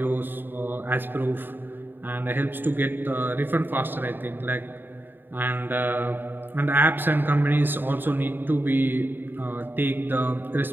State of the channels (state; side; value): late; left; 0.094 ms